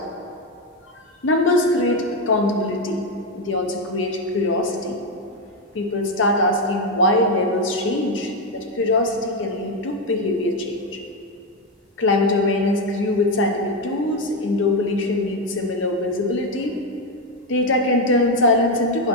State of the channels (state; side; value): normal; both; correlation 0.08